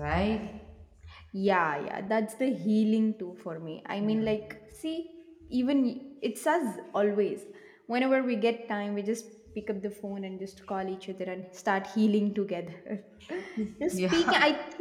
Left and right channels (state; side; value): identical; both; correlation 1.00